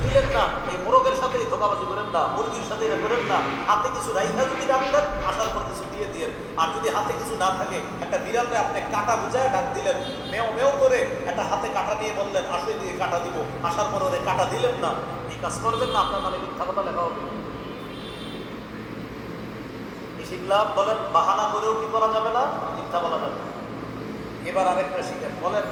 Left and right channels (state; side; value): identical; both; correlation 1.00